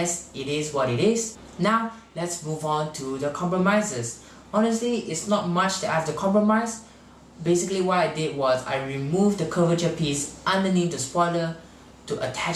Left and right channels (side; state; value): both; identical; correlation 1.00